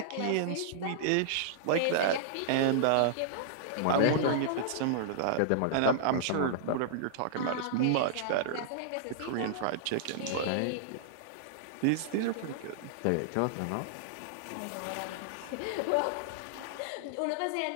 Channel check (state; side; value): different; both; correlation -0.01